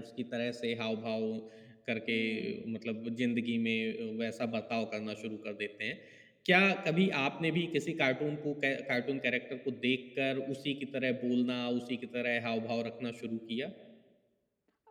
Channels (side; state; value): both; identical; correlation 1.00